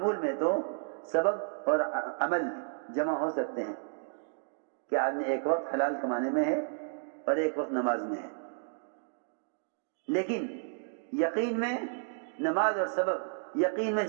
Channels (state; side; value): silent; left; digital silence